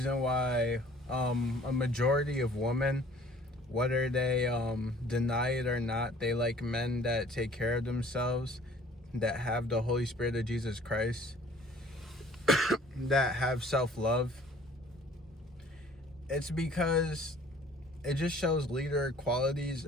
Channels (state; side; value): normal; both; correlation 0.52